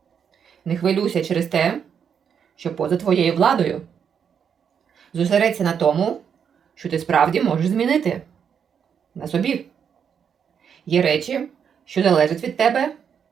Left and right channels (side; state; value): left; quieter; 7.5 dB